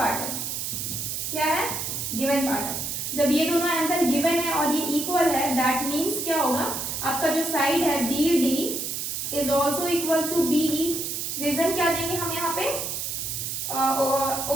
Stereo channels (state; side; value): noise; right; hiss, 3 dB below the sound